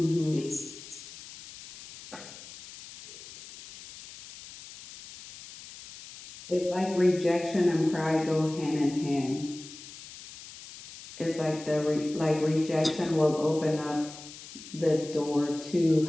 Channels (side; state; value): left; noise; hiss, 16 dB below the sound